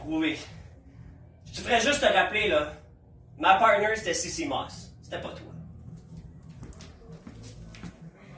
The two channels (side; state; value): both; identical; correlation 1.00